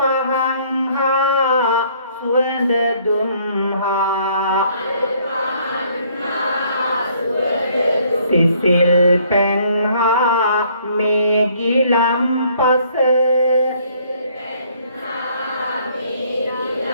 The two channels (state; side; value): inverted; both; correlation -0.63